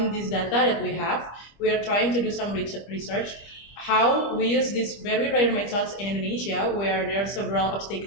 this data that we have, we are trying to do some research how we use these very rare methods in Indonesia, where there are several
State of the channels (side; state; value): right; late; 25 ms